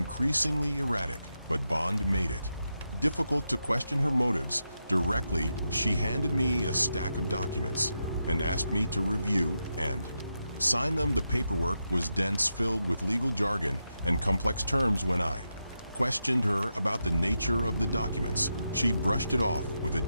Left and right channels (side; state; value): both; inverted; correlation -0.86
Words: erratic, but Bond made it difficult to question her motives directly. She handed me a stack of documents and asked me to review and sign them. The paperwork was dense, filled with legal jargon and complex terms. When I questioned her about the nature of the documents, she brushed it off with a